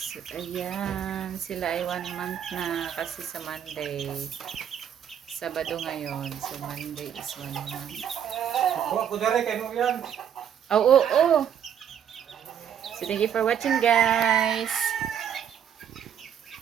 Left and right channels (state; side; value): quieter; left; 9.0 dB